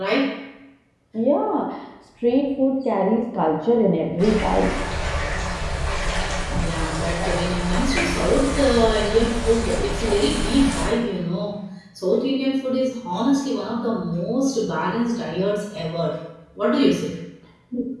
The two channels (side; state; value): both; identical; correlation 1.00